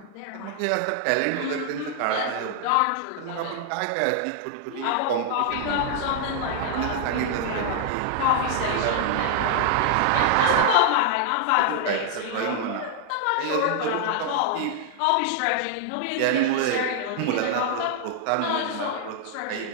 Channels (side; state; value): both; different; correlation 0.00